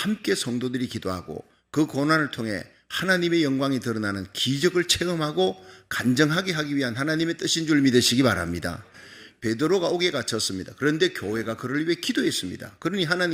성도들이 기도하고 그 고난을 통해 하나님의 영광이 드러나는 기적을 체험하고 간증하게 하기 위한 하나님의 뜻인 줄 믿으시기 바랍니다. 베드로가 옥에 갇혔습니다. 그런데 교회가 그를 위해 기도했습니다. 그러니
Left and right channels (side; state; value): both; identical; correlation 1.00